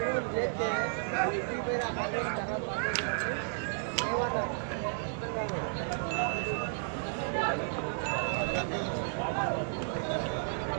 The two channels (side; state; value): left; silent; digital silence